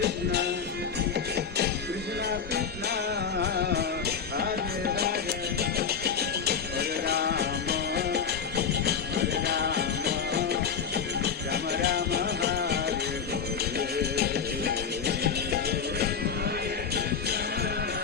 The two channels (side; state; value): right; quieter; 6.7 dB